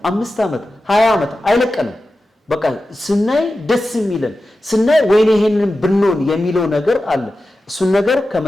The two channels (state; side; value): normal; both; correlation 0.93